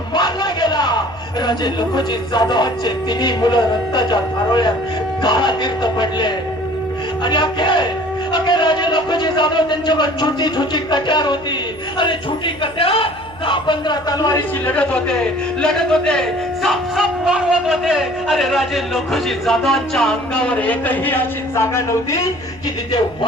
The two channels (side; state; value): right; noise; hum, 21 dB below the sound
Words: मारला गेला. राजे लखोजी जाधवांचे तिन्ही मुलं रक्ताच्या धारोळ्यात काळातीर्थ पडले. आणि अखे राजे लखोजी जाधव त्यांच्यावर छोटी छोटी कट्यार होती. अरे छोटी कट्यार 10-15 तलवारीची लढत होते, साप मारवत होते. अरे राजे लखोजी जाधवांच्या अंगावर एकही अशी जागा नव्हती की तिथे